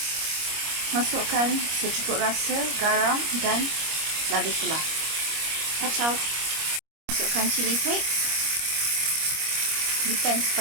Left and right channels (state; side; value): late; left; 25 ms